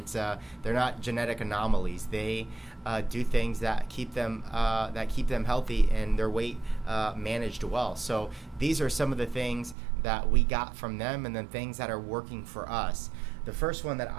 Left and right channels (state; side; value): drops out; left; at 9.8 s